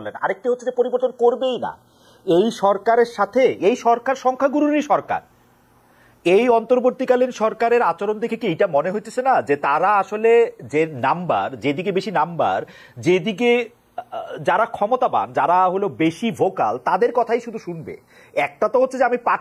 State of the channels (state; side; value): identical; both; correlation 1.00